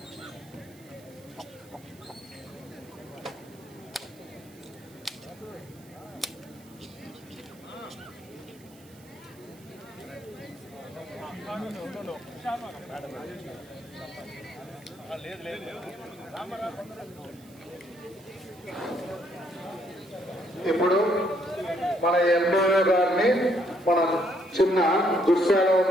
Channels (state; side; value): noise; right; hiss, 25 dB below the sound